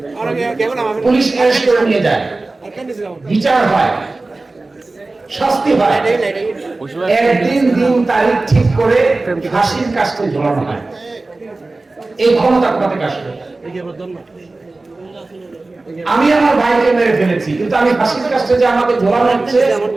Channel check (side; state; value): left; quieter; 3.3 dB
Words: পুলিশ অ্যারেস্ট করে নিয়ে যায়, বিচার হয়, শাস্তি হয়, একদিন দিন তারিখ ঠিক করে ফাঁসির কাজটা ঝোলানো হয়। এই ক্ষমতা কোথা থেকে আসবে? আমি আমার ভাইকে মেরে ফেলেছি, কিন্তু আমি ফাঁসির কাজটা যে আমাকে ঝোলানো হচ্ছে,